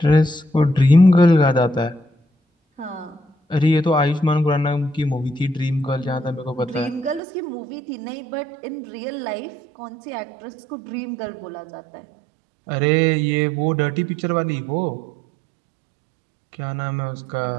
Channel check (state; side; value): drops out; left; at 7.2 s